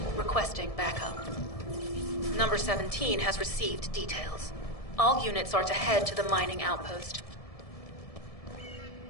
requesting backup. Number 17 has received details. All units are to head to the mining outpost.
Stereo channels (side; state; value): right; late; 1.7 ms